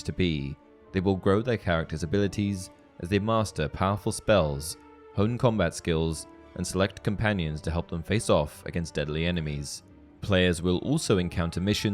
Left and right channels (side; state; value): both; identical; correlation 1.00